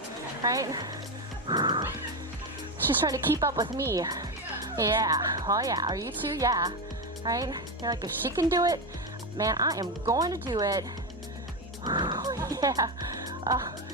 right? She's trying to keep up with me. Yeah, oh yeah, are you too? Yeah, right? You're like, if she can do it, man, I am going to do it. Yeah.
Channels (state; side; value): normal; both; correlation 0.13